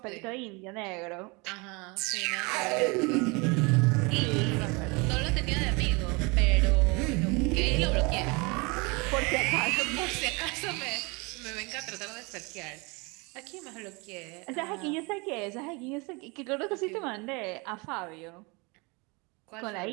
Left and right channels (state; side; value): quieter; left; 28.2 dB